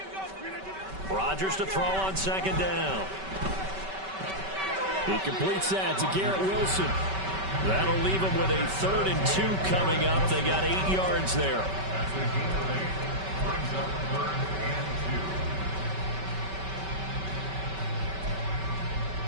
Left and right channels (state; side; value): late; left; 5.2 ms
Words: Rodgers to throw on second down. He completes that to Garrett Wilson. That'll leave him with a 3rd and 2 coming up. They got 8 yards there. That's the key play. Brings up 3rd and